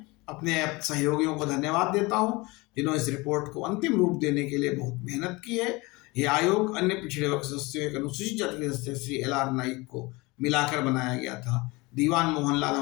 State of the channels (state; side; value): quieter; right; 24.0 dB